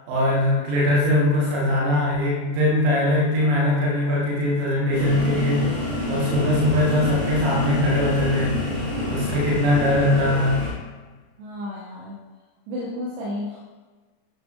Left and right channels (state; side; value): late; left; 35 ms